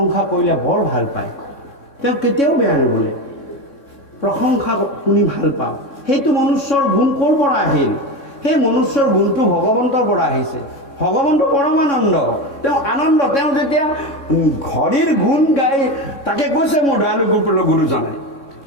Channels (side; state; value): right; late; 3.6 ms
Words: কৰিলে বৰ ভাল পায়, তেওঁ কেতিয়াও বেয়া নবোলে, প্ৰশংসা শুনি ভাল পাওঁ। সেইটো মনুষ্যৰ গুণ ক'ৰ পৰা আহিল? সেই মনুষ্যৰ গুণটো ভগৱন্তৰ পৰা আহিছে। ভগৱন্ত পৰমানন্দ, তেওঁ আনন্দ। তেওঁ যেতিয়া ঘড়ীৰ গুণ গাই তাকে কৈছে মোৰ দয়ালু গোপল গুৰুজনাই,